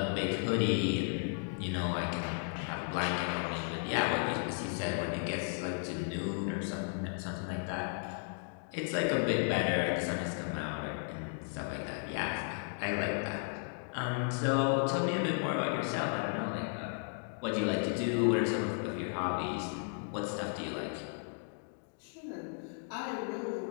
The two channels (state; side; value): silent; right; 55 dB below the other